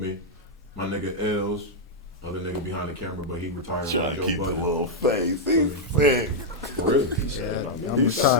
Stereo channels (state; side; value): normal; both; correlation -0.03